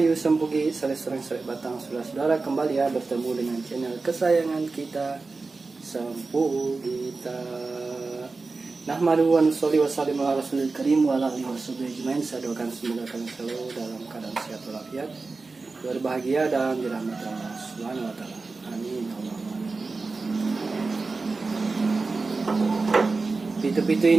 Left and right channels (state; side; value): quieter; left; 3.9 dB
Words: sempugi? Sering batang saudara kembali ya bertemu dengan channel kesayangan kita Sempugita. Nahmadu wa nusolli wa sallim ala rasulil karim wa ala alihi washabihi ajmain. Saya doakan semoga kalian selalu dalam keadaan sehat walafiat, berbahagia dan dirahmati Allah Subhanahu wa taala. Amin. Pitu-pitu